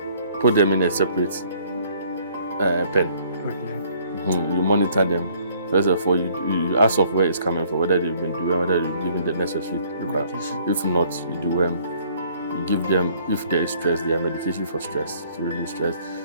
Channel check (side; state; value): both; inverted; correlation -0.60